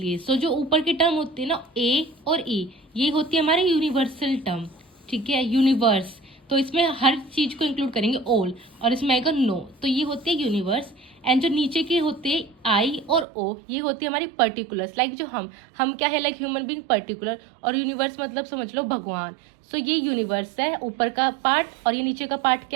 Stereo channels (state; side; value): drops out; left; at 13.2 s